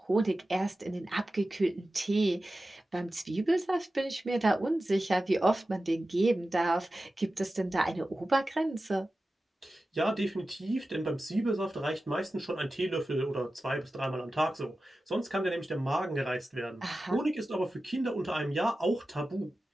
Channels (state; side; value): normal; both; correlation 0.94